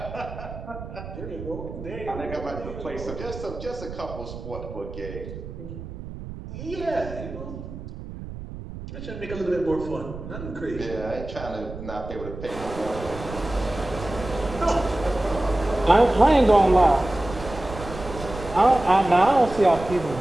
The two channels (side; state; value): right; noise; rumble, 11 dB below the sound